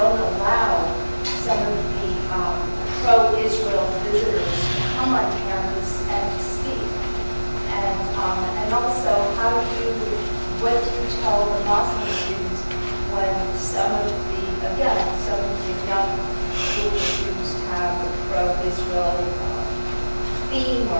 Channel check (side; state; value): both; inverted; correlation -1.00